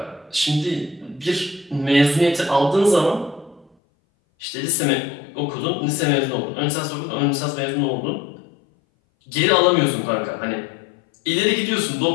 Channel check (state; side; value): drops out; right; at 3.7 s